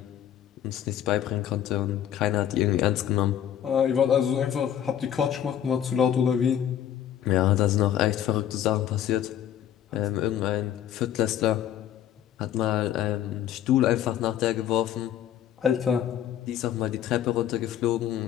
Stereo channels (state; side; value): quieter; right; 10.5 dB